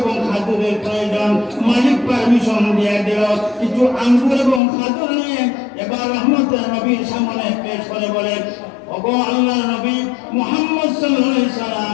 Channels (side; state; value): right; drops out; at 4.6 s